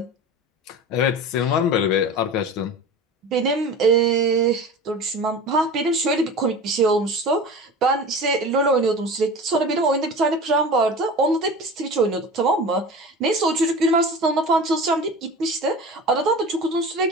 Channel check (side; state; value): both; normal; correlation 0.34